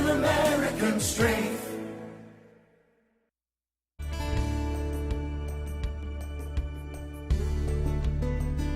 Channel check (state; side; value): identical; both; correlation 1.00